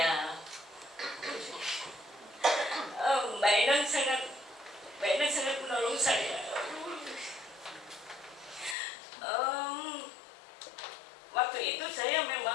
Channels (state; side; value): drops out; right; at 8.8 s